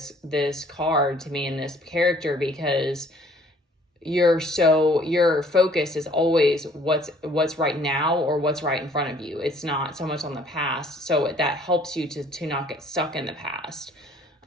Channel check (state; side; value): normal; both; correlation 0.58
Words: card to me and this character, because your focus is always what's right now, or what's right in front of you. It's not so much on the past. So that helps you to not get stuck in the past.